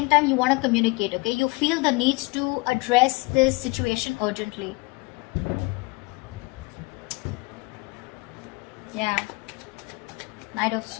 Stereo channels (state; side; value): quieter; right; 26.4 dB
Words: time you want to communicate, okay? You feel the need to address this situation urgently. Yeah. Knight of